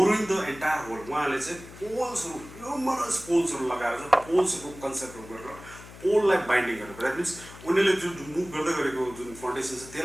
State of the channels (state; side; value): noise; left; hum, 17 dB below the sound